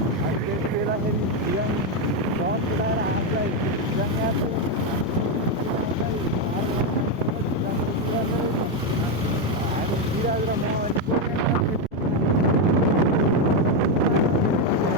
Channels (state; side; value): normal; both; correlation 0.05